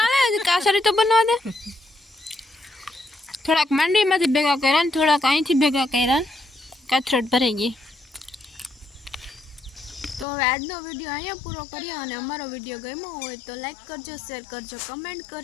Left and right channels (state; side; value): drops out; right; at 10.2 s